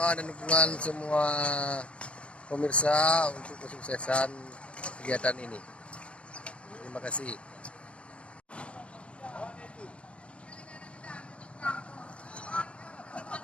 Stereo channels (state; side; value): late; right; 0.060 ms